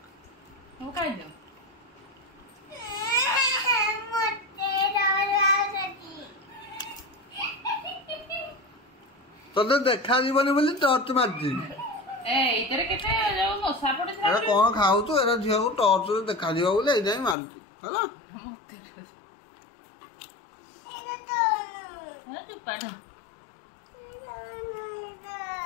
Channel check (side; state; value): right; drops out; at 17.4 s